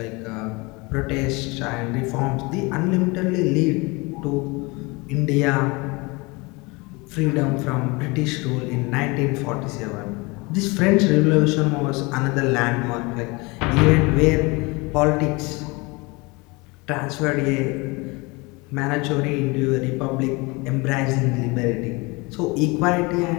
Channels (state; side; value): quieter; right; 26.1 dB